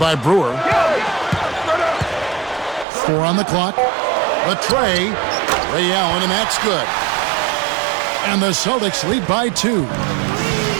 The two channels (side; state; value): left; drops out; at 2.9 s